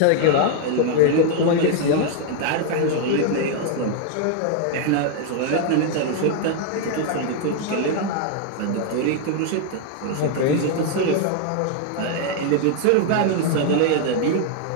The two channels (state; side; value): different; both; correlation 0.00